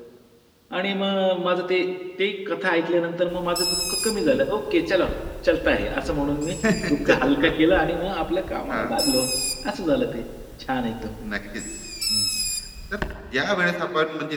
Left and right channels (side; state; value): both; identical; correlation 1.00